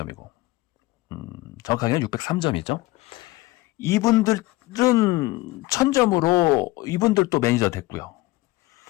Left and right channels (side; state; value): right; quieter; 19.6 dB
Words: 정확하게는 603점이죠. 이분들은 1000점으로 이분들도 매니저 됐고요.